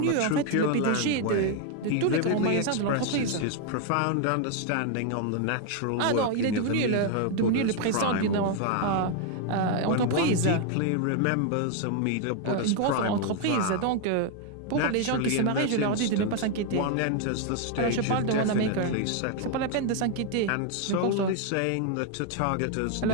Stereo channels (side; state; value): both; different; correlation 0.01